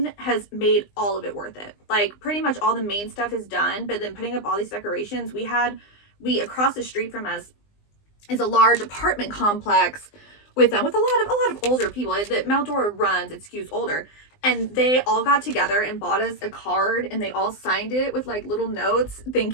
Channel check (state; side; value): late; right; 20 ms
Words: has made all of it worth it. Like, pretty much all the main stuff is done, but then putting up all these decorations, we across the street from us is a large apartment complex with a lot of older people that Mount Dora runs. It skews older, and they all got together and bought us a card, and they all signed it with like little notes